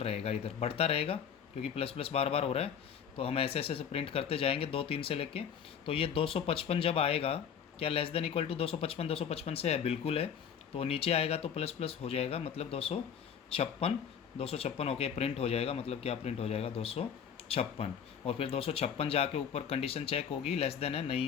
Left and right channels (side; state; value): right; quieter; 7.8 dB